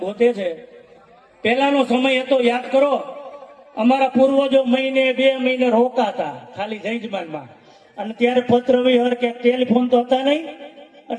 ગોતે છે, પેલાનો સમય હતો યાદ કરો. અમારા પૂર્વજો મહિને 2 મહિને રોકાતા ખાલી જયજમાનમાં, અને ત્યારે પત્ર વિહર કે ટેલિફોન તો હતા નહીં,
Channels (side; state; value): both; identical; correlation 1.00